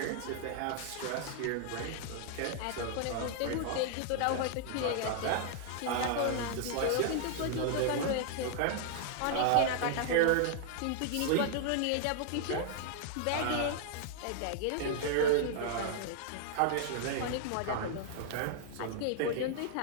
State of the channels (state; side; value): different; both; correlation -0.01